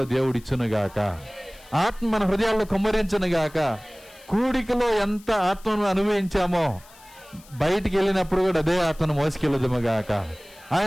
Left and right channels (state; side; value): noise; left; hiss, 24 dB below the sound